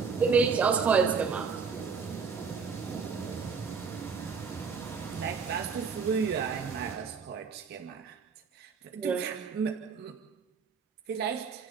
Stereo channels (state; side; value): quieter; left; 5.5 dB